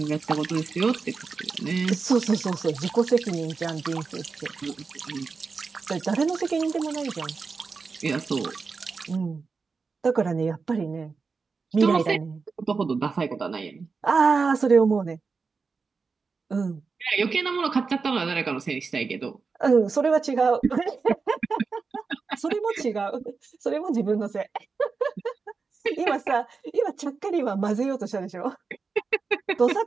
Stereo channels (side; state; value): left; quieter; 4.8 dB